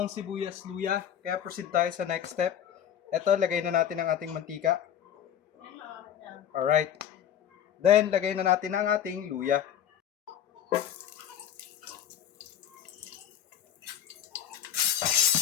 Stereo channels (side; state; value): right; quieter; 9.8 dB